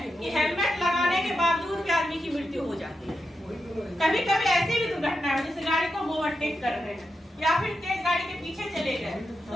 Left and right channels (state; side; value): normal; both; correlation 0.87